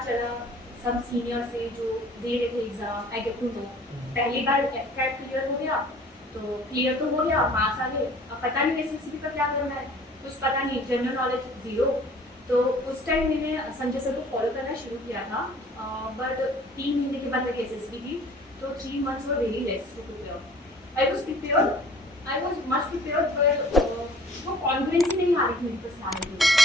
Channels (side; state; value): both; normal; correlation 0.51